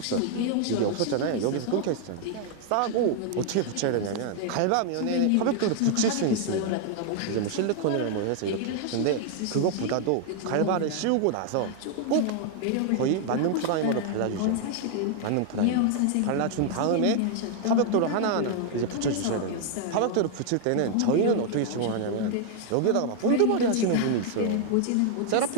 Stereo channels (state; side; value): different; both; correlation 0.00